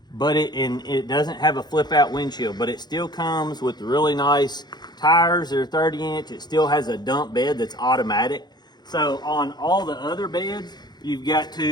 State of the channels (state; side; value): late; right; 0.20 ms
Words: but it doesn't have a flip out windshield, but it still comes with really nice tires. They're 30-inch. It still has a dump bed that's automatic. So on all the other beds, you've got